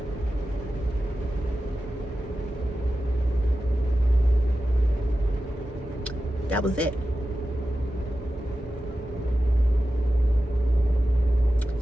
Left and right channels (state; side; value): normal; both; correlation 0.93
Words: That was it.